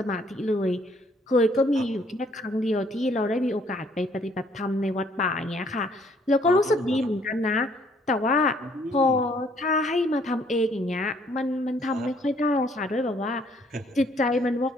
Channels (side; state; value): both; normal; correlation 0.64